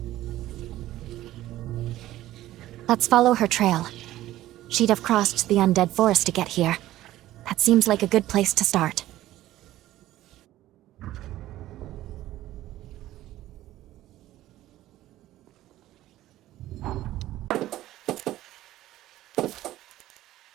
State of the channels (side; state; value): left; quieter; 14.8 dB